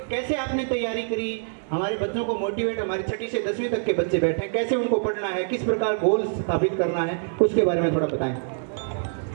कैसे आपने तैयारी करी, हमारे बच्चों को मोटिवेट, हमारी 6ठी से 10वीं तक के बच्चे बैठे हैं, कैसे उनको पढ़ना है, किस प्रकार गोल स्थापित करना है, उसके बारे में थोड़ा बताएं।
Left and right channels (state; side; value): silent; left; digital silence